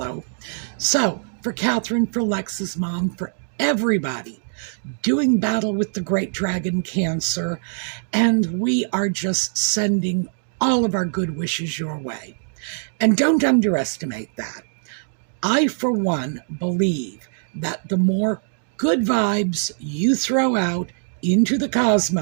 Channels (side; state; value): left; silent; digital silence